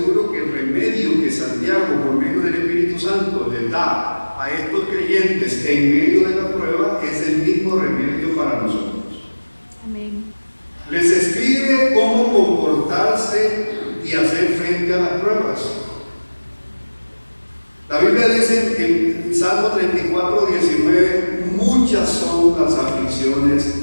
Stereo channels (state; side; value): inverted; both; correlation -1.00